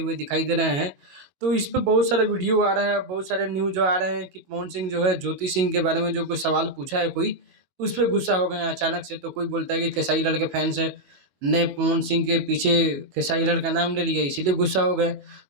हुए दिखाई दे रहे हैं। तो इस पे बहुत सारा वीडियो आ रहा है, बहुत सारे न्यूज आ रहे हैं कि पवन सिंह जो है ज्योति सिंह के बारे में जो कोई सवाल पूछा है कोई, उस पर गुस्सा हो गए हैं अचानक से। तो कोई बोलता है कि खेसारी लाल के फैंस ने पवन सिंह के पीछे खेसारी लाल का नाम ले लिया इसीलिए गुस्सा हो गए।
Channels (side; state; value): left; late; 22 ms